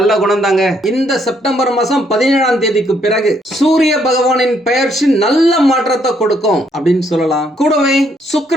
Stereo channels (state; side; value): normal; both; correlation 0.71